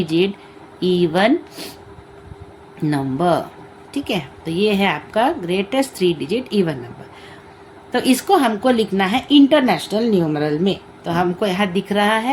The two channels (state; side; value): identical; both; correlation 1.00